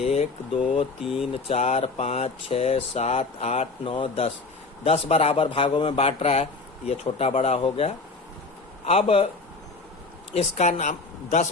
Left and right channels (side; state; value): right; quieter; 3.8 dB